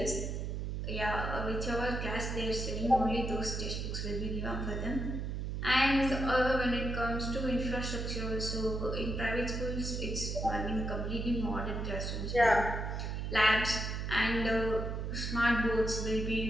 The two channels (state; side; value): noise; right; hum, 3 dB below the sound